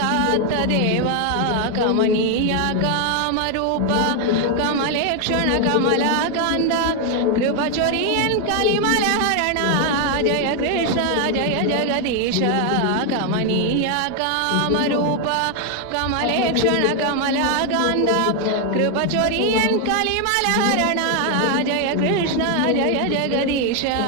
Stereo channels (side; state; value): both; different; correlation 0.01